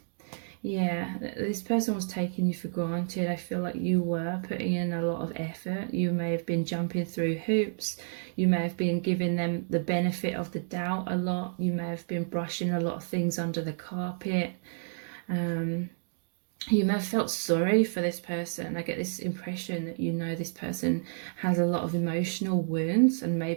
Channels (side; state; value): left; silent; digital silence